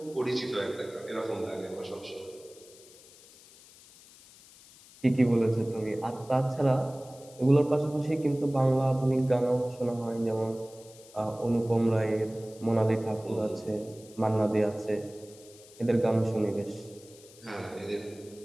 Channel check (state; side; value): noise; left; hiss, 23 dB below the sound